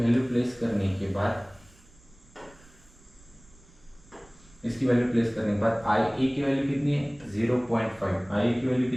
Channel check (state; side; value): noise; right; rumble, 26 dB below the sound